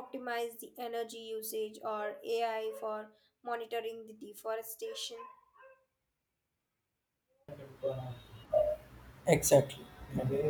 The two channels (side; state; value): both; identical; correlation 1.00